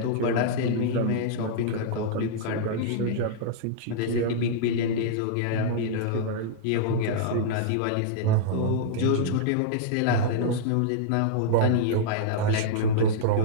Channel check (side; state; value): both; different; correlation -0.02